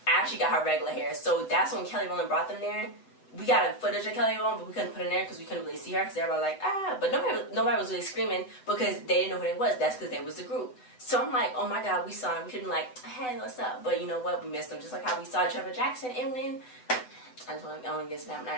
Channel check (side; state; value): right; late; 7.9 ms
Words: Ashley got her regular hair. So that's when Kelly Rowland brought them there. We got a footage of Kelly Rowland, but we couldn't put it in there because we couldn't really see her because everybody was like, ah. But nobody was really screaming because they didn't know who they was. That's because they was the group. So I'm like, oh my God, we saw him. We couldn't like, hey, what's up? But you know what? We missed them. Just like how we saw Trevor Jackson and when I don't get snapped